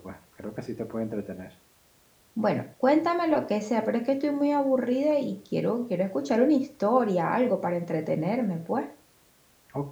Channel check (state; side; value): identical; both; correlation 1.00